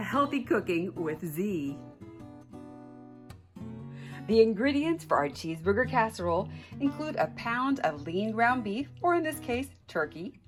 Healthy Cooking with Z. The ingredients for our cheeseburger casserole include a pound of lean ground beef, or in this case, turkey,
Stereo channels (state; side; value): identical; both; correlation 1.00